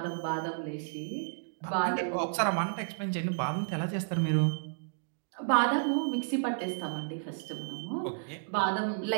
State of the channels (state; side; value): silent; left; digital silence